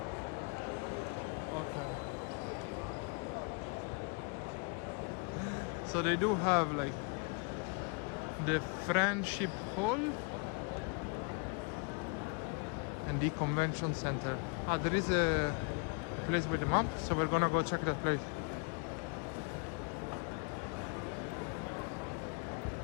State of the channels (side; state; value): right; quieter; 34.9 dB